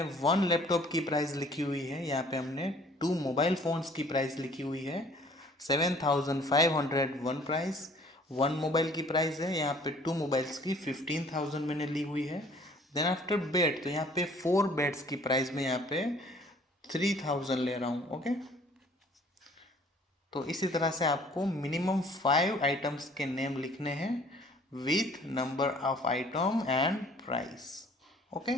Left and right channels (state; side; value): normal; both; correlation 0.55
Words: 1 लैपटॉप की प्राइस लिखी हुई है, यहाँ पे हमने 2 मोबाइल फ़ोन्स की प्राइस लिखी हुई है। 7,501 प्राइस 1 मोबाइल की प्राइस है, यहाँ पे 2 मोबाइल्स की 15,000 मैंने ली हुई है। देन आफ्टर बेड, तो यहाँ पे 4 बेड्स की प्राइस में यहाँ पे 3,000 ले रहा हूँ। ओके, तो इसी तरह से आपको मिनिमम 5 आइटम्स के नेम लिखने हैं with number of item and price. Okay,